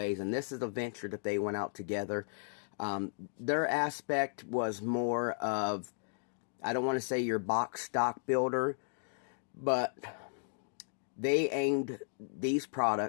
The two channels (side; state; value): right; silent; digital silence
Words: And this is a venture that they went out together. Their aspect was more of, I don't want to say your box stock builder, but they aimed these